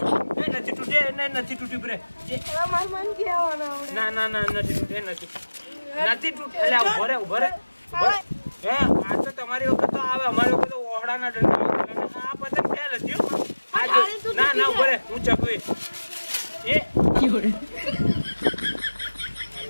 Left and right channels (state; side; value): inverted; both; correlation -1.00